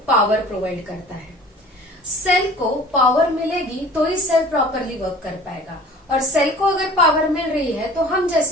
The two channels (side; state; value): both; normal; correlation 0.45